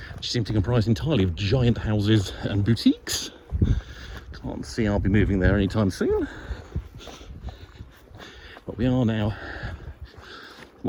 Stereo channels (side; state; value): both; identical; correlation 1.00